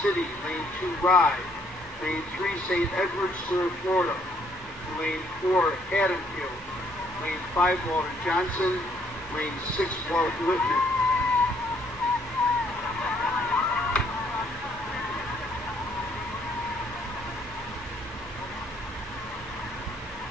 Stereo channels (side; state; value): both; normal; correlation 0.66